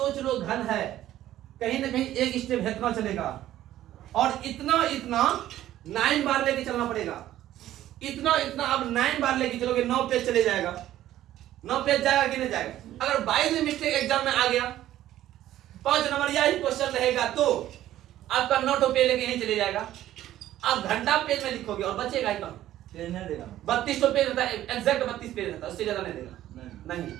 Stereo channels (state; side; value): quieter; left; 13.3 dB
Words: लो घन है, कहीं ना कहीं 1 स्टेप इतना चलेगा, और इतना 9 बार लेके चलना पड़ेगा। इतना अब 9 बार लेके चलोगे 9 पेज चले जाएगा, 9 पेज जाएगा कि नहीं जाएगा? अगर 22 में मिस्टेक एग्जाम में आ गया, 5 नंबर यही क्वेश्चन रहेगा, तो आपका 9 पेज लेके यहीं चले जाएगा। आप घंटा पेज में लिखोगे और बचेगा ही कम, 32 पेज रहता है, एग्जैक्ट 32 पेज रहता है, उससे ज्यादा नहीं देगा, नहीं।